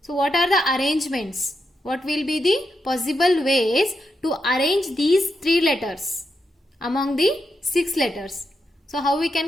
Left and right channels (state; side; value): normal; both; correlation 0.84